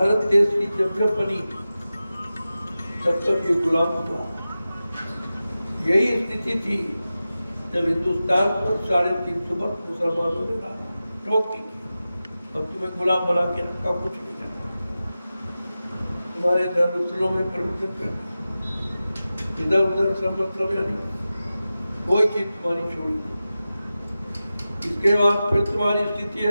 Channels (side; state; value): both; inverted; correlation -0.94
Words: देश की जब जब बनी तब तक ये गुलाम हुआ। यही स्थिति थी जब हिंदुस्तान पर 350 वर्ष मुसलमानों ने टोक दी, अब तुम्हें गुलाम बना के रखा, कुछ नहीं करना, तुम्हारे धर्मस्थलों में प्रवचन कर, इधर उधर सब मतलब यानी कोई चीज तुम्हारी छोड़ी नहीं। इसके बाद फिर तुम्हारी स्थिति